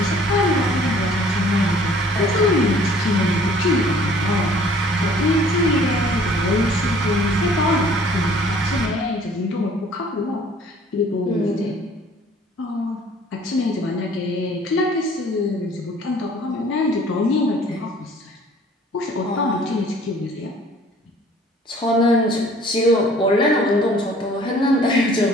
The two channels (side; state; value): both; normal; correlation 0.54